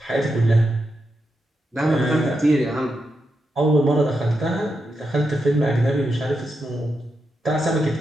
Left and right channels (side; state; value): both; normal; correlation 0.86